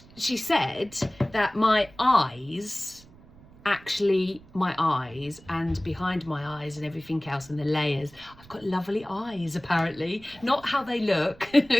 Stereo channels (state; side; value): noise; right; rumble, 23 dB below the sound